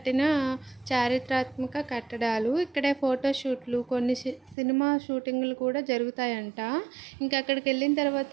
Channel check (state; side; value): drops out; left; at 4.5 s